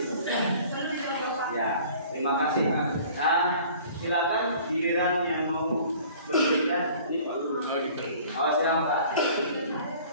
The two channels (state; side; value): inverted; both; correlation -0.49